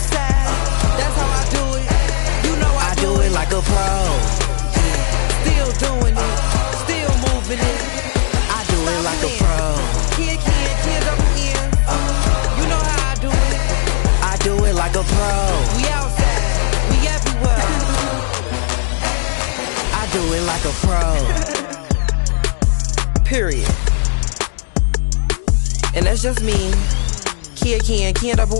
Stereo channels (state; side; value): silent; right; digital silence